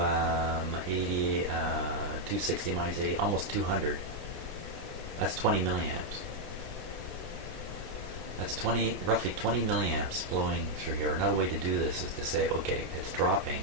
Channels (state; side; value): late; left; 28 ms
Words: 80, 260 minus 80, almost 200. That's 20 milliamps. That's roughly 20 milliamps flowing through here. Another way to do this is to say, okay, it's dropping